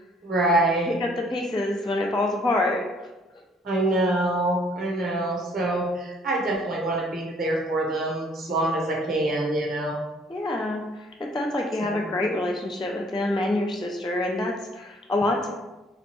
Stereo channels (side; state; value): both; normal; correlation 0.61